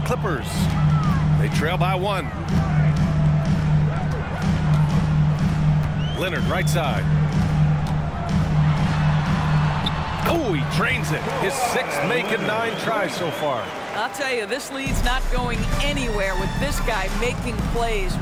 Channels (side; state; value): both; identical; correlation 1.00